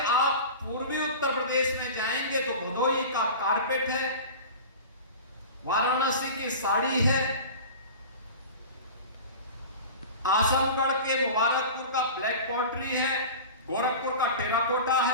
आप पूर्वी उत्तर प्रदेश में जाएंगे तो भदोही का कारपेट है, वाराणसी की साड़ी है, आजमगढ़ के मुबारकपुर का ब्लैक पॉटरी है, गोरखपुर का टेराकोटा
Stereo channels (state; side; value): inverted; both; correlation -0.34